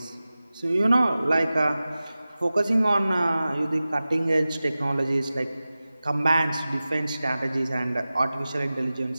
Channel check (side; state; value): both; inverted; correlation -0.96